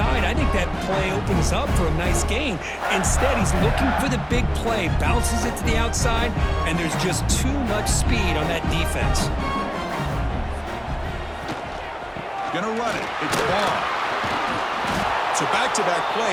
I think that play opens up for a nice gain. Instead, he's looking for the big play, bounces it to the outside, and there's just too much speed on that defense. Gonna run it. It's ball. So back-to-back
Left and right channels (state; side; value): identical; both; correlation 1.00